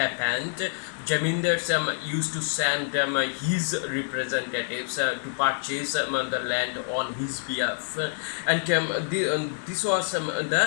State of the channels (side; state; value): right; silent; digital silence